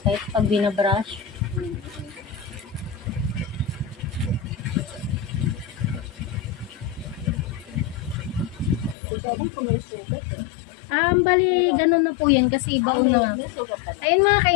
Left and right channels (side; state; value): right; drops out; at 9.0 s